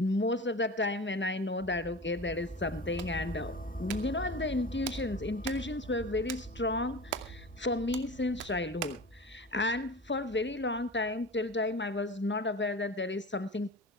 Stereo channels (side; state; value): both; normal; correlation 0.33